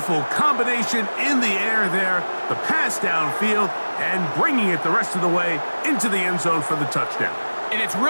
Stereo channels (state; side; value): inverted; both; correlation -1.00